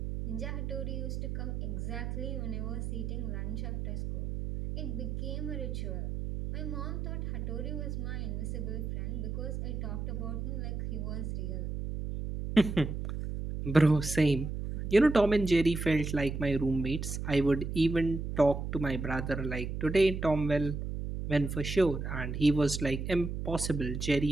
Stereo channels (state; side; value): noise; right; hum, 4 dB below the sound